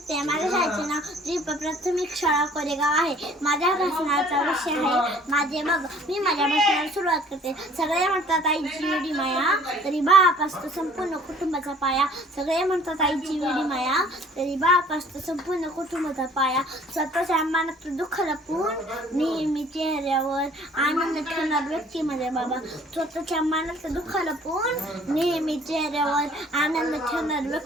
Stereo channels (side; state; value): both; normal; correlation 0.54